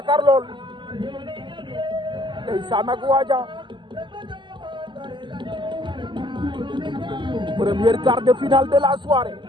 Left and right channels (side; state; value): left; late; 0.23 ms